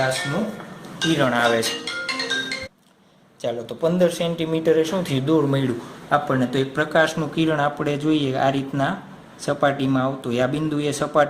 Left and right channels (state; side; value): identical; both; correlation 1.00